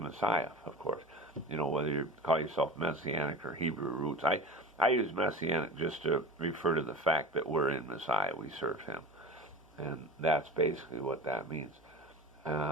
of course. Whether you call yourself Messianic or Hebrew roots. I use Messianic just to refer to the fact that we're in Messiah, we serve him. And that's basically what that means.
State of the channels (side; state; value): both; normal; correlation 0.34